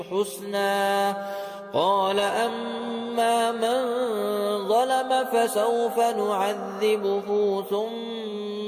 حسنا. قال أما من ظلم فسوف نعذبه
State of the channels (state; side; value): identical; both; correlation 1.00